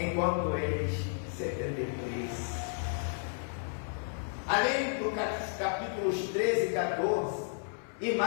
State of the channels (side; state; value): right; silent; 56 dB below the other